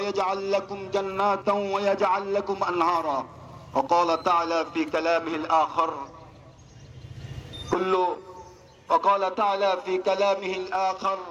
لكم جنات ويجعل لكم أنهارا وقال تعالى في كلامه الآخر وقال تعالى في كلامه الآخر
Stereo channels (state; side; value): identical; both; correlation 1.00